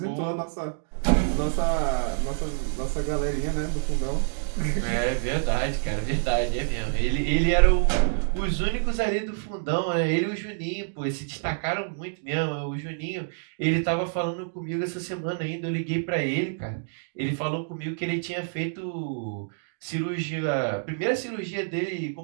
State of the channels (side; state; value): left; silent; digital silence